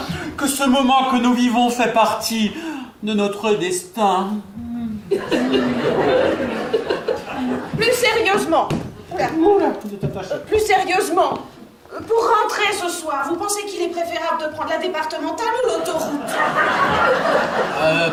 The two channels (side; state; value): both; identical; correlation 1.00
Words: que ce moment que nous vivons fait partie de notre destin. Plus sérieusement. Plus sérieusement. Pour rentrer ce soir, vous pensez qu'il est préférable de prendre la départementale ou l'autoroute?